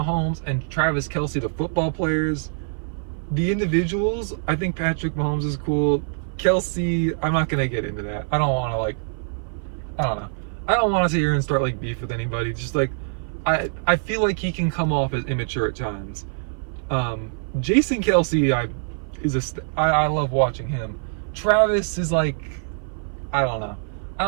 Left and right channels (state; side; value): silent; left; 56 dB below the other